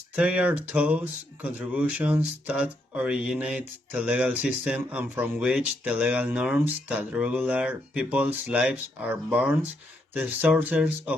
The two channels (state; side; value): normal; both; correlation 0.77